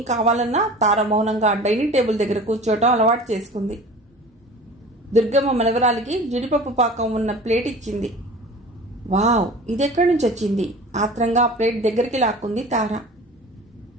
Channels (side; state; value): both; normal; correlation 0.40